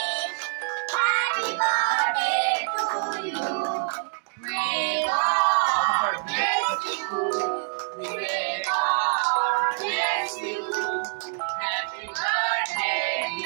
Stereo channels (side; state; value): left; silent; digital silence